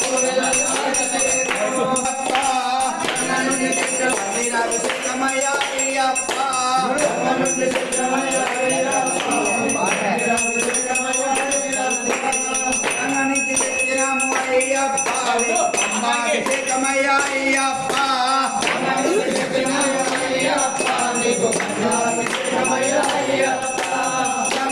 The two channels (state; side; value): identical; both; correlation 1.00